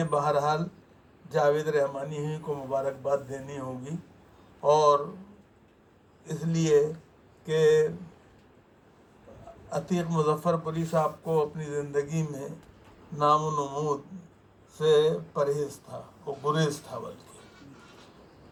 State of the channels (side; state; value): both; identical; correlation 1.00